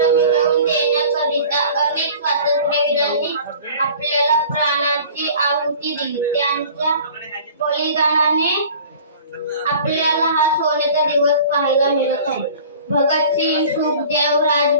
मिळवून देण्याकरिता अनेक स्वातंत्र्यवीरांनी आपल्याला प्राणाची आहुती दिली. त्यांच्या बलिदानाने आपल्याला हा सोन्याचा दिवस पाहायला मिळत आहे. भगतसिंग, सुखदेव,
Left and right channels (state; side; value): inverted; both; correlation -0.45